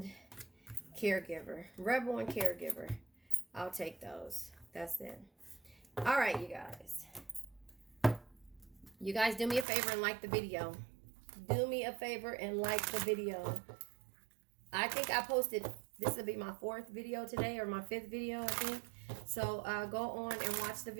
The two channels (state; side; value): drops out; left; at 9.7 s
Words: caregiver, rebel and caregiver, I'll take those. That's it. All right, you guys do me a favor and like the video. Do me a favor and like the video. I think I posted, this will be my 4th video today, or my 5th video, I think. So go on and watch the